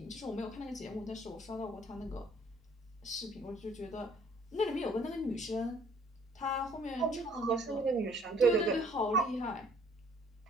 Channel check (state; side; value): normal; both; correlation 0.59